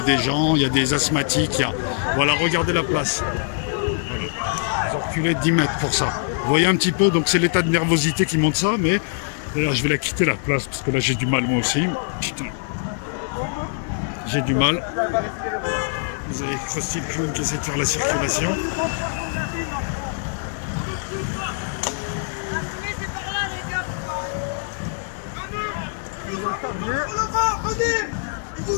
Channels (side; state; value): right; silent; digital silence